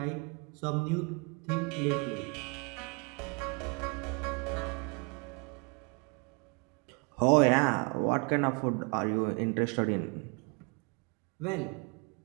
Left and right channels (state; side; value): quieter; left; 31.5 dB